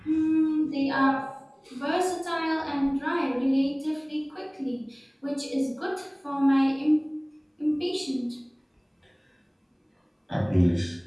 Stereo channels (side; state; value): both; identical; correlation 1.00